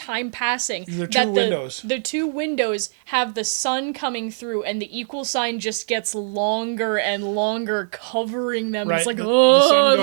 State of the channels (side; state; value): left; silent; digital silence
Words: passing. There are that two windows. The two windows have the sun coming through, and the equal sign just gets longer and longer, covering them. Right, It's like, the sun